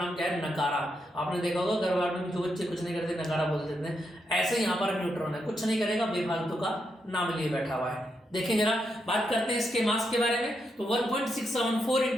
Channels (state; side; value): normal; both; correlation 0.82